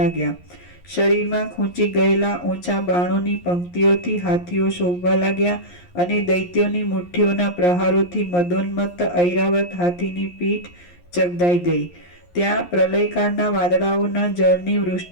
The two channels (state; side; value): late; right; 11 ms